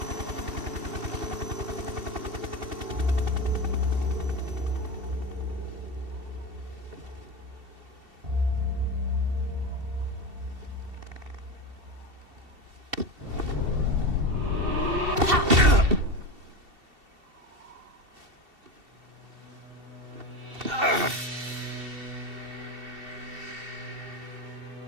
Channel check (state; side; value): late; left; 2.7 ms